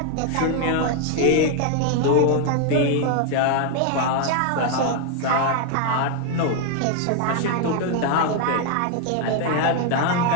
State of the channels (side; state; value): both; different; correlation 0.00